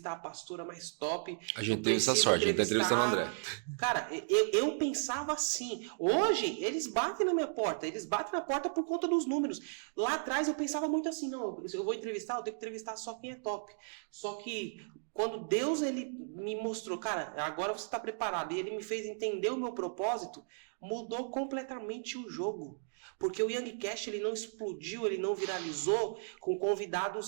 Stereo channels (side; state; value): left; silent; digital silence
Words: a pastora mais top, eu preciso entrevistar... Cara, eu pensava assim. Hoje, eles batem na minha porta, eles batem na porta por conta dos números. Lá atrás eu pensava muito assim, não, eu vou entrevistar, eu tenho que entrevistar só quem é top. Só que quando Deus ele me mostrou, cara, agora você está preparado, e ele me fez entender o meu propósito, mudou completamente o jogo. Porque o Youngcast ele não explodiu, ele não viralizou com